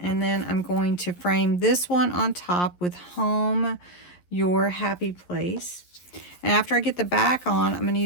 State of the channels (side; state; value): right; late; 11 ms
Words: then I'm going to frame this one on top with Home Your Happy Place. And after I get the back on, I'm going to